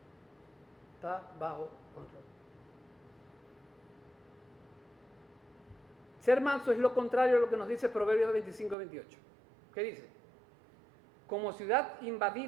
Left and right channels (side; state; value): left; drops out; at 8.8 s